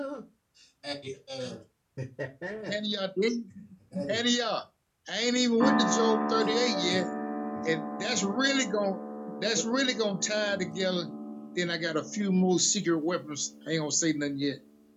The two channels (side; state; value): both; identical; correlation 1.00